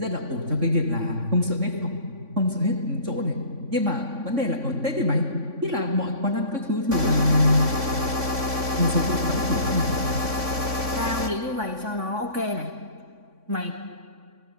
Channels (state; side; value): late; left; 3.5 ms